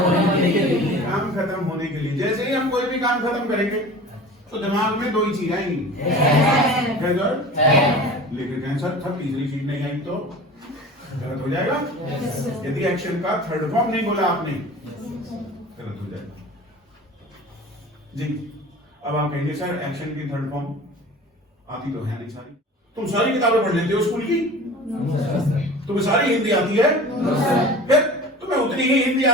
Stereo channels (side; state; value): both; normal; correlation 0.39